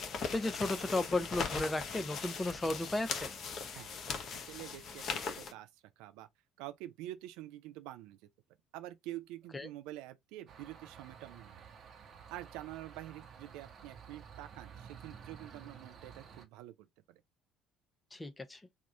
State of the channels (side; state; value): both; normal; correlation 0.77